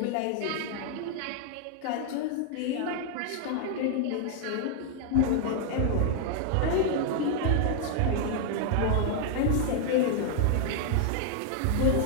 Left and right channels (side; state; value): both; different; correlation 0.00